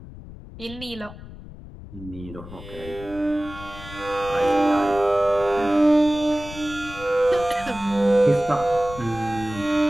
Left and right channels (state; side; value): noise; left; rumble, 15 dB below the sound